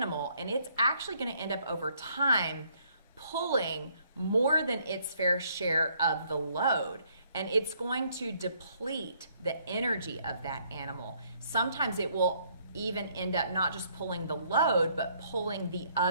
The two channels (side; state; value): both; inverted; correlation -0.66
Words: and it's actually going to end up over time pulling more than its fair share of the load. And it's going to deplete the energy of that animal. Sometimes it will even end up not just pulling the load, but pulling the